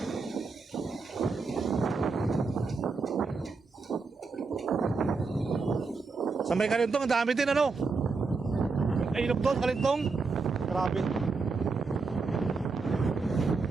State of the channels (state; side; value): quieter; left; 4.4 dB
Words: Sa may Kalintong, ang dami din ano. Ay, ilog doon, Kalintong. Grabe.